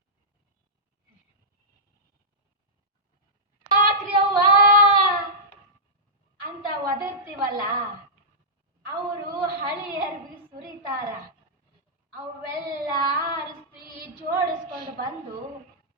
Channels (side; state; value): both; normal; correlation -0.15